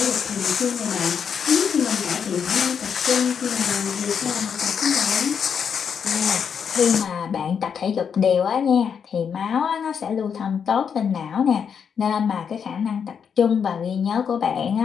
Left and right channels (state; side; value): quieter; right; 7.1 dB